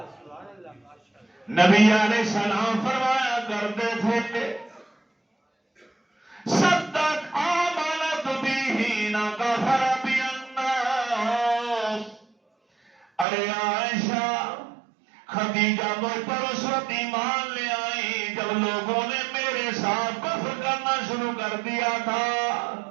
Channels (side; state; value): left; drops out; at 13.2 s